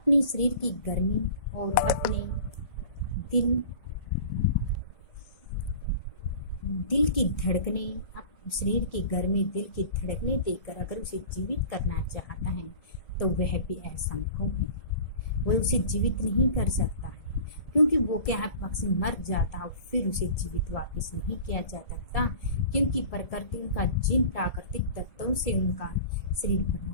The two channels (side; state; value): right; late; 1.7 ms